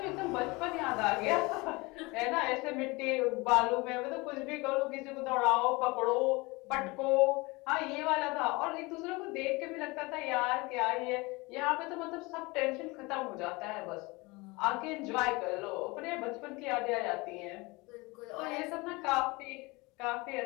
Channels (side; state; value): right; quieter; 24.6 dB